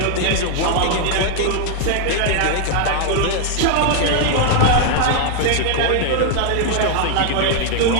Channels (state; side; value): different; both; correlation 0.01